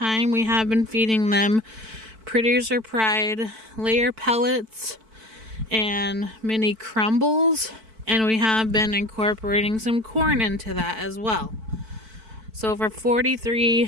we have been feeding them Producer Pride layer pellets and mini crumbles, and we have been incorporating some corn into that as well. So for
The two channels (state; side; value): late; left; 4.5 ms